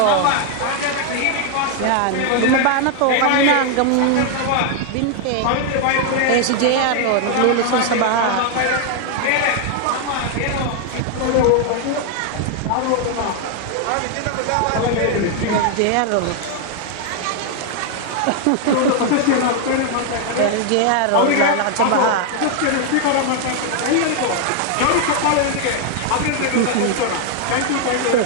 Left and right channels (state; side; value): different; both; correlation 0.00